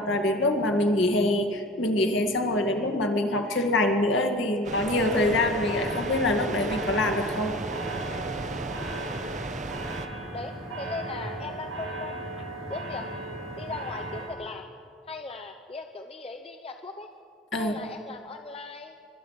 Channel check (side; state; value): both; normal; correlation 0.38